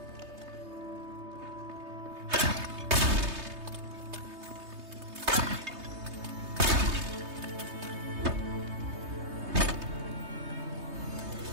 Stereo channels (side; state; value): left; late; 3.2 ms